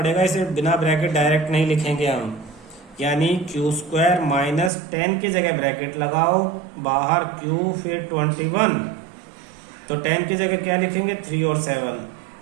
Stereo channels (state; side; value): drops out; left; at 4.7 s